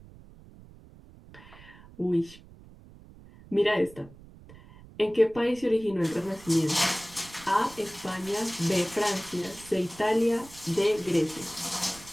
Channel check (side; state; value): right; noise; rumble, 21 dB below the sound